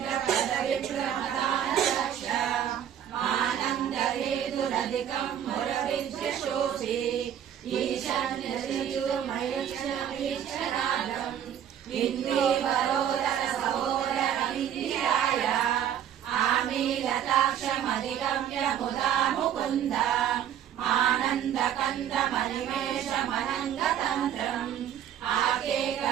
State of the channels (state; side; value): quieter; left; 9.9 dB